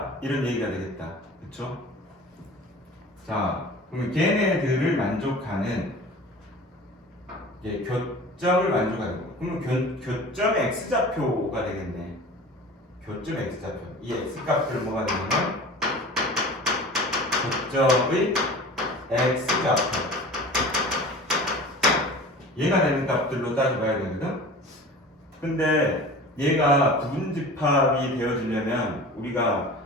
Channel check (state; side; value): normal; both; correlation 0.39